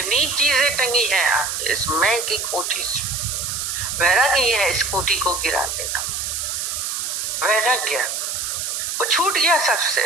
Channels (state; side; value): noise; right; hiss, 3 dB below the sound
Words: चीजें टंगी हैं इस मैं की कोठी से। वैराग्य ये है, इस कोठी को गिरा देना। वैराग्य वो छूट गया सबसे।